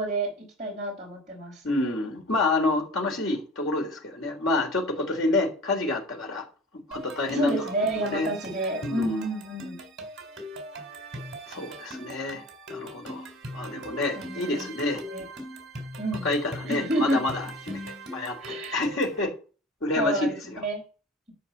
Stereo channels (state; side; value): normal; both; correlation 0.39